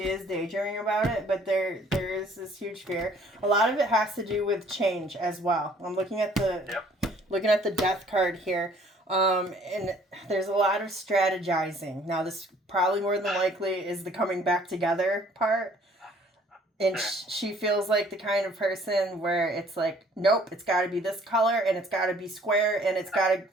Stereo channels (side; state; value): both; normal; correlation 0.57